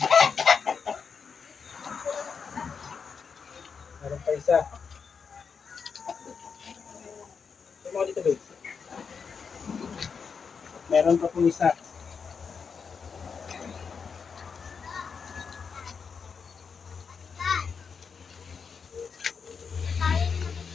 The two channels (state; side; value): quieter; right; 5.9 dB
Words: Meron pa isa. Ito dito guys. Meron pa po isa.